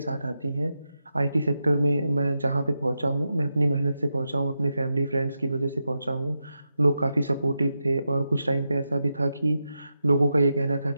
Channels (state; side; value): inverted; both; correlation -0.88